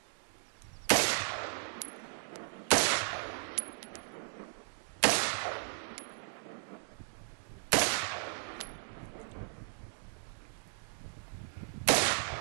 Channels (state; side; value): silent; left; digital silence